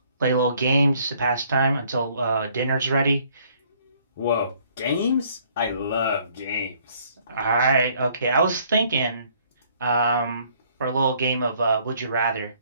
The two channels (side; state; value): both; inverted; correlation -0.62